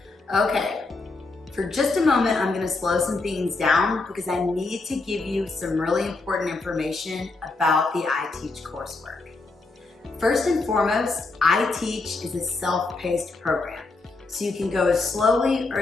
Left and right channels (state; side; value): quieter; right; 3.5 dB